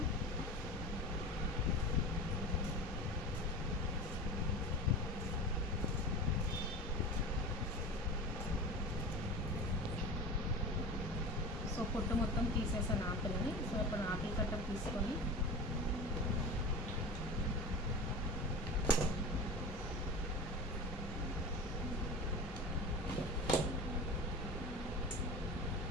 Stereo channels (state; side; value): normal; both; correlation 0.31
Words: సో పొట్టు మొత్తం తీసేసాను ఆపిల్ని. సో ఇప్పుడు ఆపిల్ కట్టర్ తీసుకొని